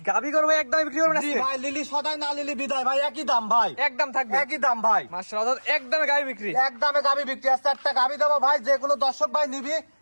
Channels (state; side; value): inverted; both; correlation -1.00